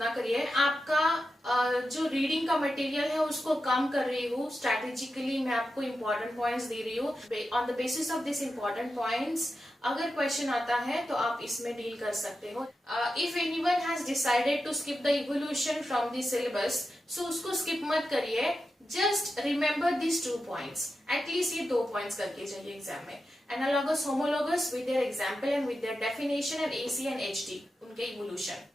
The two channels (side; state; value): both; normal; correlation 0.90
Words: करिए। आपका जो रीडिंग का मटेरियल है उसको कम कर रही हूँ, स्ट्रेटेजिकली मैं आपको इंपॉर्टेंट पॉइंट्स दे रही हूँ। On the basis of this important points अगर क्वेश्चन आता है तो आप इसमें डील कर सकते हो। If anyone has decided to skip the evolution from the syllabus, so उसको स्किप मत करिए, just remember this 2 points. At least ये 2 पॉइंट्स करके जाइए एग्जाम में। Analogous homologous with their example and with their definition and AC and HD उनके evolution,